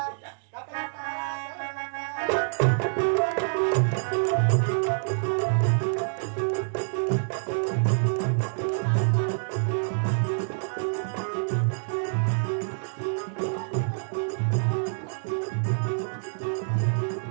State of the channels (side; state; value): left; silent; digital silence